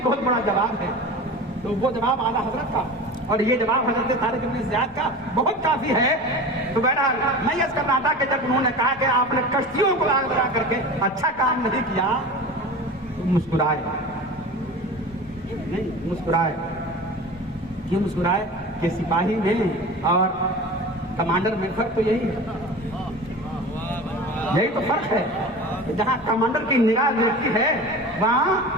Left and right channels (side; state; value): both; normal; correlation 0.34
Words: بہت بڑا جواب ہے، تو وہ جواب اعلیٰ حضرت کا اور یہ جواب حضرت طارق ابن زیاد کا بہت کافی ہے۔ تو بہرحال میں یہ کر رہا تھا کہ جب انہوں نے کہا کہ آپ نے کشتیوں کو آگ لگا کر کے اچھا کام نہیں کیا، تو مسکرائے نہیں، مسکرائے کیوں مسکرائے؟ کہ سپاہی میں اور کمانڈر میں فرق تو یہی ہے، یہی تو فرق ہے کہ جہاں کمانڈر کی نگاہ دیکھتی ہے وہاں